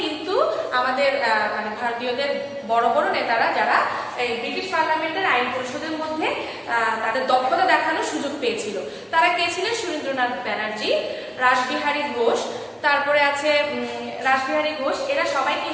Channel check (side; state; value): both; identical; correlation 1.00